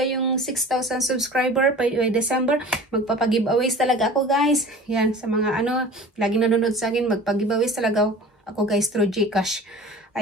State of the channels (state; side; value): normal; both; correlation 0.41